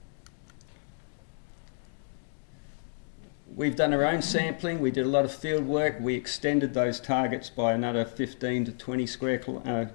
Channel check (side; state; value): right; silent; digital silence